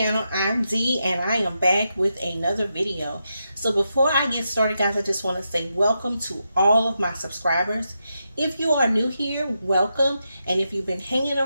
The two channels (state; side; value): inverted; both; correlation -0.86